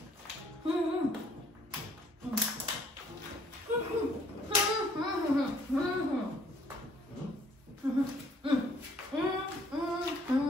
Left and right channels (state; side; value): normal; both; correlation 0.61